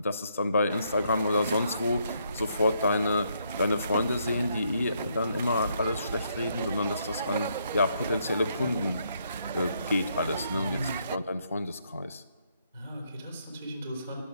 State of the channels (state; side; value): inverted; both; correlation -0.74